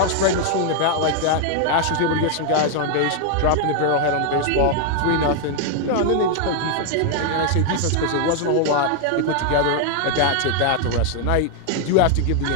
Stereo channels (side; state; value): both; different; correlation 0.00